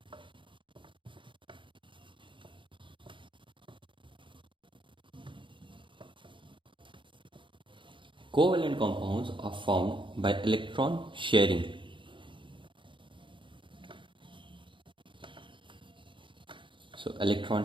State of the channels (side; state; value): left; late; 0.24 ms